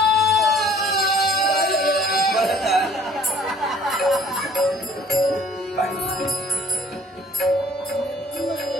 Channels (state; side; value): normal; both; correlation 0.54